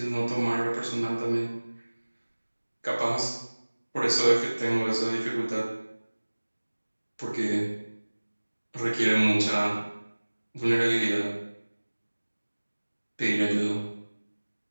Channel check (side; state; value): both; inverted; correlation -1.00